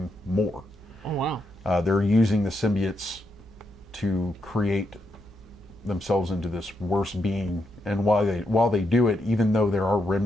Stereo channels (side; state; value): both; normal; correlation 0.81